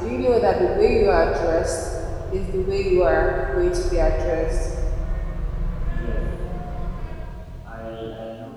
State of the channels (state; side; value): identical; both; correlation 1.00